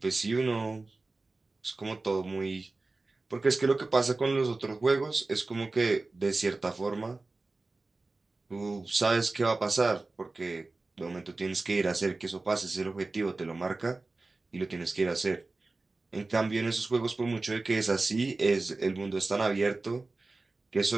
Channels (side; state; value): left; quieter; 3.4 dB